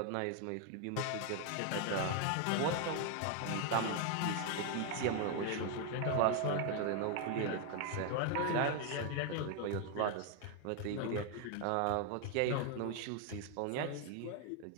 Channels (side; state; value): both; different; correlation 0.01